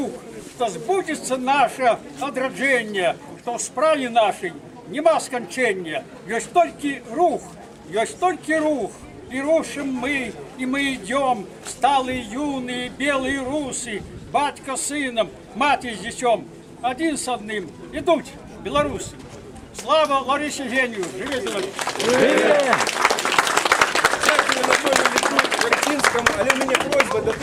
что сбудется наше одраджение, что в справе нашей нема скончения, есть только рух, и рушим мы, и мы идем, сталые юные белые русы, батька с сыном, мать с детем, один с одним, идут белорусы. Слава Ларисе Геню! Живе Беларусь! Дякую Анатолію Вертинському, але у мене просьба до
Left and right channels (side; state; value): both; identical; correlation 1.00